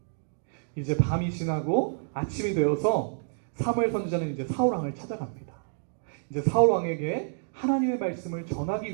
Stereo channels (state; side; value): silent; left; digital silence